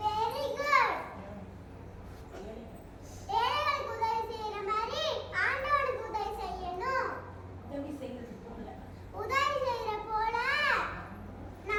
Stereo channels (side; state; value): both; identical; correlation 1.00